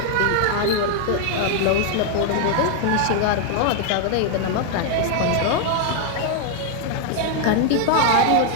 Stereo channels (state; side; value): different; both; correlation 0.00